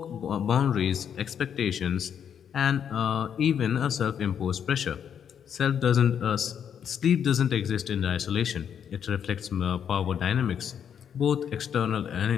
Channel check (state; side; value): quieter; right; 8.3 dB